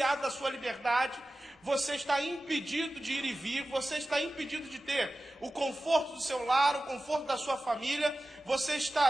da sua liberdade, você está impedido de ir e vir, você está impedido de ter o conforto do seu lar, o conforto da sua família, você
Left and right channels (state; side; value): normal; both; correlation 0.95